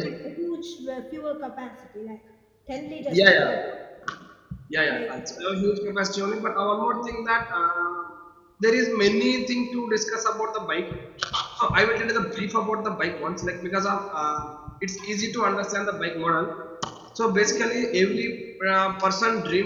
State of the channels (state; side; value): identical; both; correlation 1.00